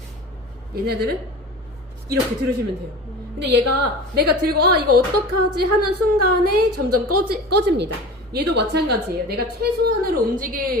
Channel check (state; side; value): normal; both; correlation 0.35